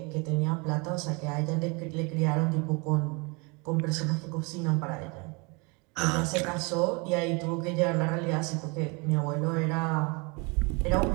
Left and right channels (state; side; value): quieter; left; 29.5 dB